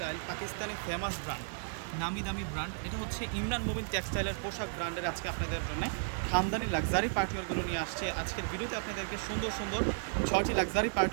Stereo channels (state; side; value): silent; left; 55 dB below the other